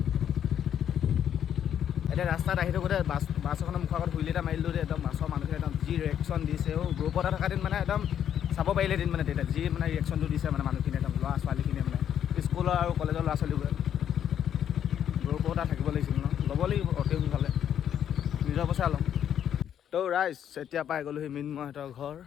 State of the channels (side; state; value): right; quieter; 9.5 dB